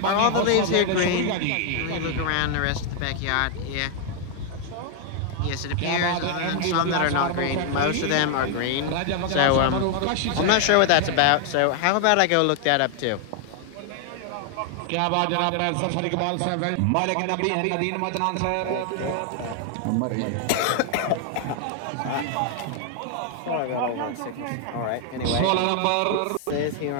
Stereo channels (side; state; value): both; different; correlation 0.00